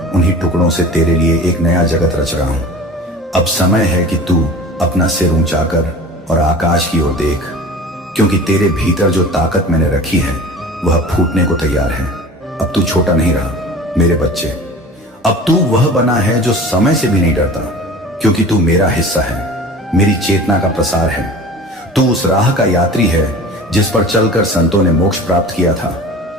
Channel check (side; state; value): both; normal; correlation 0.39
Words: उन्हीं टुकड़ों से तेरे लिए एक नया जगत रच रहा हूं। अब समय है कि तू अपना सिर ऊंचा कर और आकाश की ओर देख, क्योंकि तेरे भीतर जो ताकत मैंने रखी है वह फूटने को तैयार है। अब तू छोटा नहीं रहा मेरे बच्चे। अब तू वह बना है जो समय से भी नहीं डरता, क्योंकि तू मेरा हिस्सा है, मेरी चेतना का प्रसार है। तू उस राह का यात्री है जिस पर चलकर संतों ने मोक्ष प्राप्त किया था।